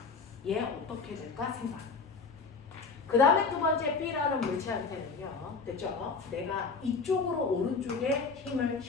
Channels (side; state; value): right; quieter; 4.6 dB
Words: 얘 어떻게 될까 생각. 그 다음에 두 번째 B라는 물체한테는요. 됐죠? 내가 이쪽으로 오른쪽에 힘을